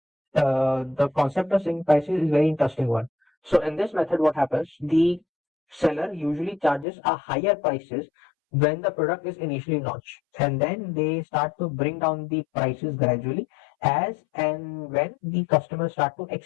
concept of skimming pricing is very interesting one. So in this method, what happens? The seller usually charges a higher prices when the product is initially launched, and then they start to bring down the prices gradually as and when the customers start to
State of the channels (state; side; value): drops out; right; at 6.9 s